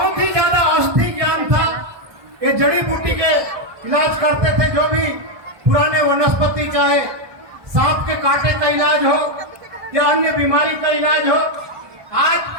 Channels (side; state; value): left; late; 1.2 ms